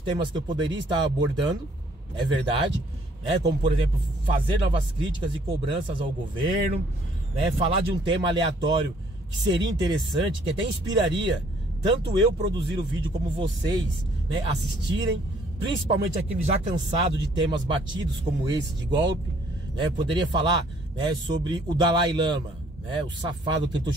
que eu poderia estar abordando, é verdade, como por exemplo, fazer novas críticas e cobranças ao governo, falar de um tema aleatório que seria interessante, que até inspiraria tanto eu produzir o vídeo como vocês assistirem, principalmente aqueles já cansados de temas batidos como esse de golpe. Poderia falar sobre o Dalai Lama, o safado que tentou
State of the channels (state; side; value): normal; both; correlation 0.62